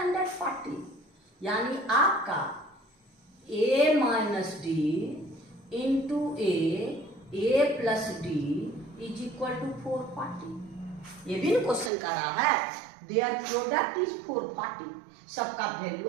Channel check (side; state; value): left; drops out; at 11.9 s